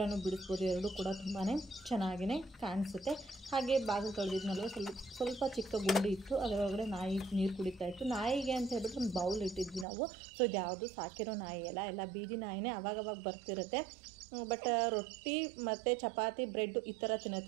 ಬಿಡಿಸ್ಬೋದು. ಎರಡೂ ಕೂಡ ತುಂಬಾ ಚೆನ್ನಾಗಿಯೇ ಕಾಣಿಸುತ್ತೆ. ಹಾಗೆ ಬಾಗಿಲು ತೊಳೆದಿದ್ನಲ್ವ, ಸ್ವಲ್ಪ ಚಿಕ್ಕ ಗುಂಡಿ ಇತ್ತು, ಅದರೊಳಗಡೆ ನಾಯಿ ನೀರು ಕುಡಿತಾ ಇತ್ತು. ನಾಯಿಗೆ ಅಂತ ಹೇಳ್ಬಿಟ್ಟು ಒಂದು ಬೌಲ್ ಇಟ್ಟಿದ್ವಿ ನಾವು. ಸೊ ಇದು ಯಾವುದು ಸಾಕಿರೋ ನಾಯಿ ಎಲ್ಲ ಬೀದಿ ನಾಯಿನೇ, ಅವಾಗವಾಗ ಬರ್ತಿರುತ್ತೆ. ಬಟ್ ರೊಟ್ಟಿ ಮತ್ತು ಚಪಾತಿ ಬ್ರೆಡ್ ಈ ಥರ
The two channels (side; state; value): left; drops out; at 9.9 s